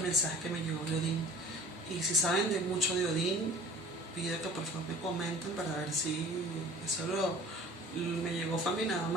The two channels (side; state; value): both; normal; correlation 0.45